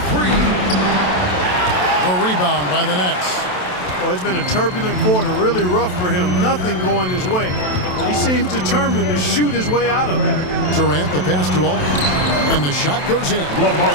three. The rebound by the Nets. Well, it's been a turbulent quarter, really rough for him. Nothing going his way, but he seems determined to shoot his way out of it. Durant, the pass to Aldridge, and the shot goes in.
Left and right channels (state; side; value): late; right; 27 ms